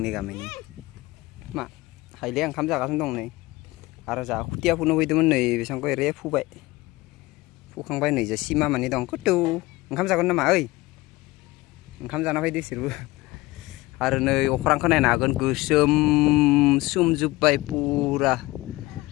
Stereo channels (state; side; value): quieter; right; 20.0 dB